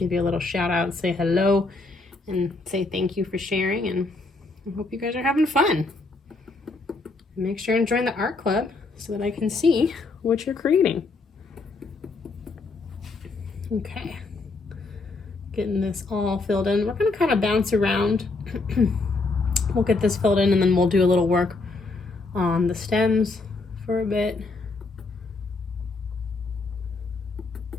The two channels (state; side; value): quieter; right; 3.6 dB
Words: you a little shout out, say hello, and say thank you for sharing, and I hope you guys are having fun. Make sure and join the art club so that I can see what you're creating. Okay, getting this all filled in. We're going to kind of bounce around. We'll get this filled in and then we'll do a little work on the stems for a bit.